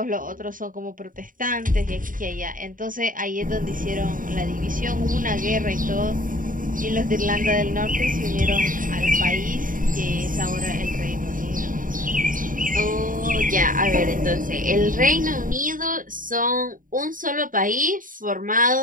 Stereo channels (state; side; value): late; left; 0.39 ms